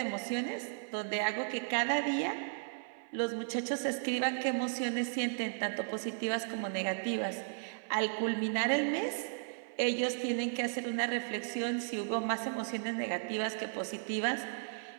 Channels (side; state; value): left; silent; 54 dB below the other